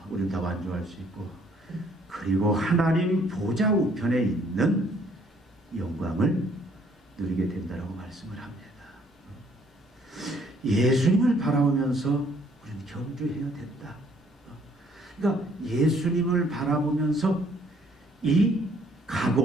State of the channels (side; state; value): both; normal; correlation 0.63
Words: 우리는 다 완주할 수 있고, 그리고 하나님 보좌 우편에 있는 영광을 누리게 된다라고 말씀을 합니다. 예수님을 바라보면서 우리는 경주해야 된다. 그러니까 예수님을 바라보면서 이